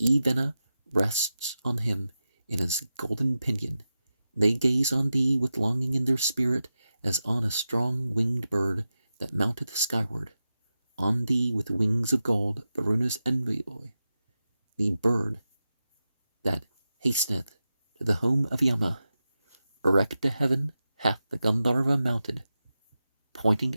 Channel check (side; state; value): both; inverted; correlation -0.91